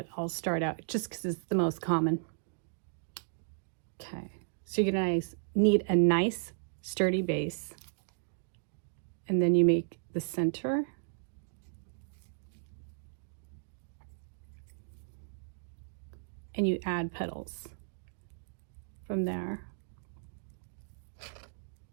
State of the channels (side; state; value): left; silent; digital silence